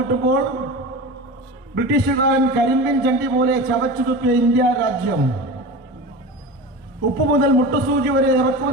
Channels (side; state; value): both; normal; correlation 0.29